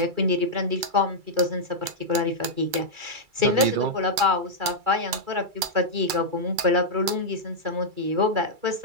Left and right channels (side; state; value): left; late; 2.3 ms